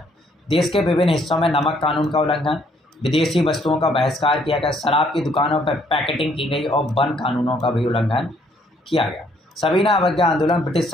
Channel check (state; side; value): normal; both; correlation 0.66